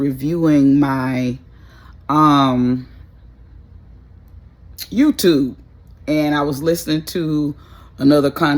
my YouTube, and I was listening to another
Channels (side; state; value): both; identical; correlation 1.00